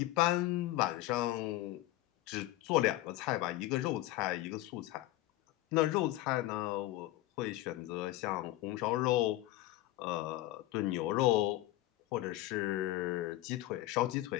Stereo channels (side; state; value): right; quieter; 16.7 dB